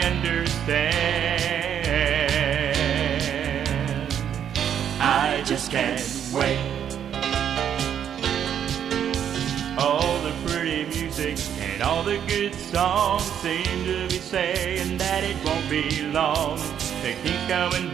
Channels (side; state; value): left; quieter; 9.1 dB